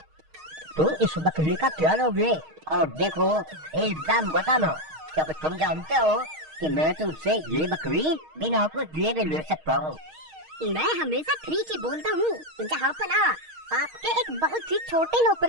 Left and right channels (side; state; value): left; late; 6.4 ms